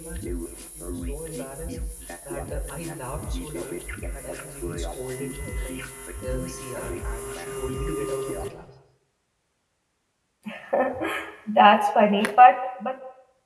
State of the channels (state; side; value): identical; both; correlation 1.00